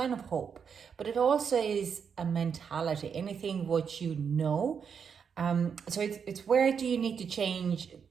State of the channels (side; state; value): left; quieter; 6.8 dB